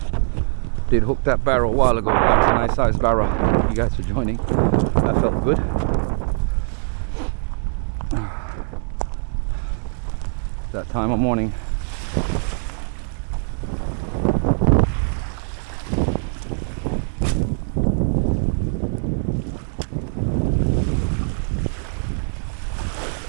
did hook that barra a while ago. That's a nice size barra. Thank you guys for joining. That felt good. That time of morning.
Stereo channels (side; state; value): left; silent; digital silence